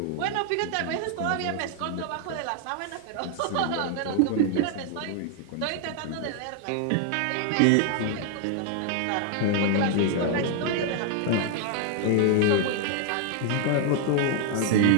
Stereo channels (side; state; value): both; different; correlation 0.00